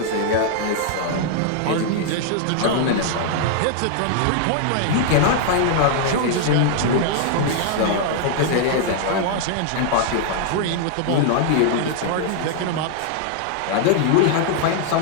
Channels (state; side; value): different; both; correlation -0.01